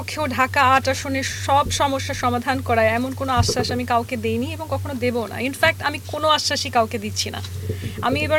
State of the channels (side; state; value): both; identical; correlation 1.00